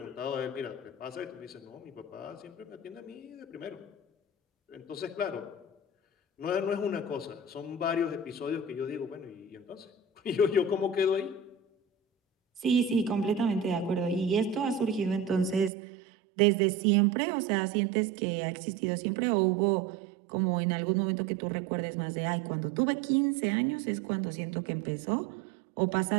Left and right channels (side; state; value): left; drops out; at 15.7 s